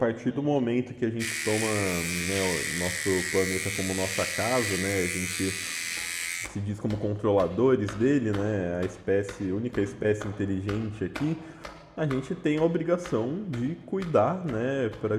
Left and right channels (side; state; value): both; identical; correlation 1.00